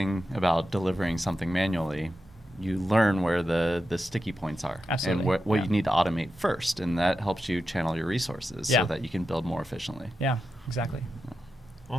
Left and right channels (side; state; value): both; normal; correlation 0.90